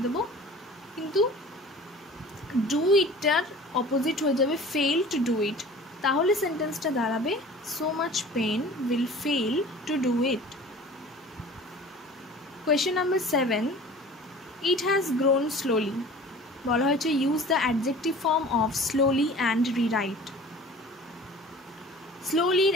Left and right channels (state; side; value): normal; both; correlation 0.43